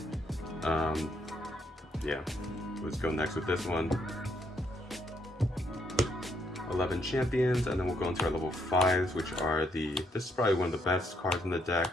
Yeah, let's go next with this one. 11 champions, and then we'll go into our level 5s, which are this is probably one of the best cards in the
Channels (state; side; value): normal; both; correlation 0.73